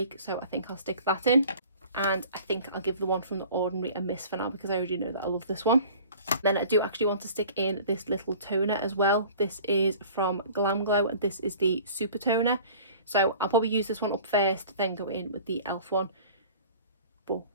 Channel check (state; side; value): inverted; both; correlation -0.45